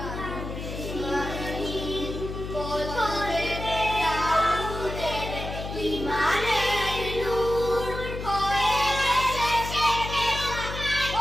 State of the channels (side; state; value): left; noise; hum, 7 dB below the sound